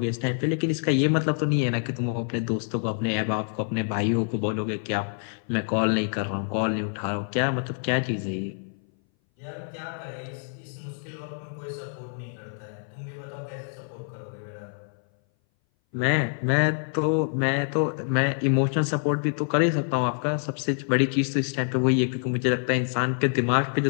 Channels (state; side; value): silent; right; 59 dB below the other